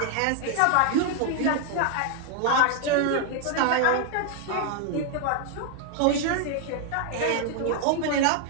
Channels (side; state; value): both; different; correlation 0.00